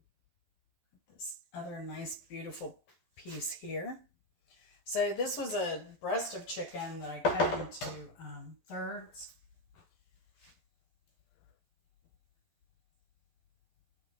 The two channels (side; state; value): right; late; 11 ms